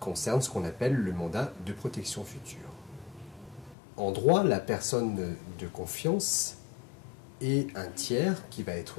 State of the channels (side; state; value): right; drops out; at 3.8 s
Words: ce qu'on appelle le mandat de protection future. En droit, la personne de confiance est un tiers qui va